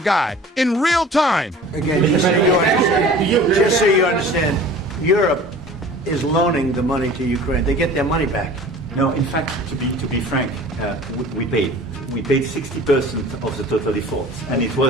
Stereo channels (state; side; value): normal; both; correlation 0.44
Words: in real time. Again, just so you understand, Europe is loaning the money to Ukraine. They get their money back. No, in fact, to be frank, we paid 60% of the total effort, and it